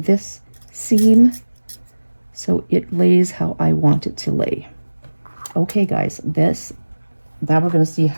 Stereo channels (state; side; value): inverted; both; correlation -1.00